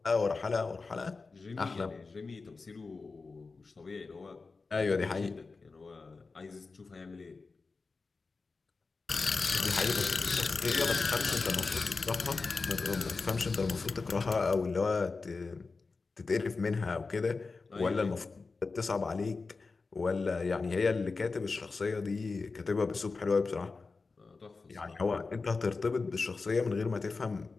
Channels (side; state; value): right; quieter; 4.1 dB